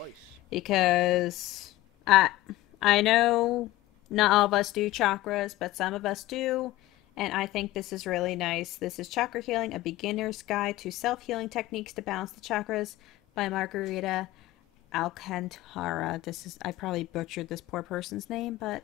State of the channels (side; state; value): right; quieter; 17.0 dB